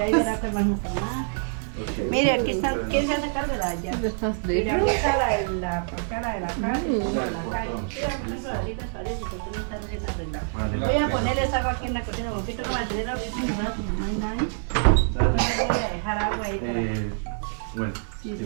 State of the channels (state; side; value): silent; left; 59 dB below the other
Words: verá que más nos tomar. Mire, aquí está, ¿quién se hace cargo de la llave? The first Mira, bedroom. aquí está la de la carne, y la calle. Mira, unas raditas parece que tú no estás recién arreglado. Voy a ponerle esa agua aquí en la cocina, un poquito para tener ahorita en el brazo, no hay nadie. Voy a dejar agua ahí para... Bueno, Sí,